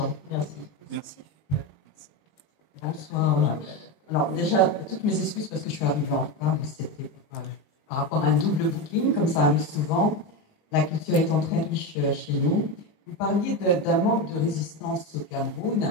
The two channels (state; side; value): late; right; 19 ms